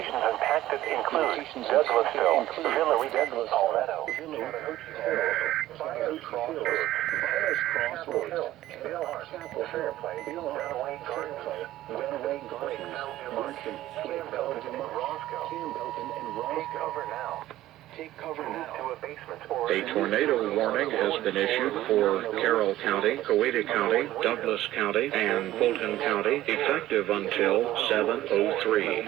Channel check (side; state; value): left; quieter; 14.7 dB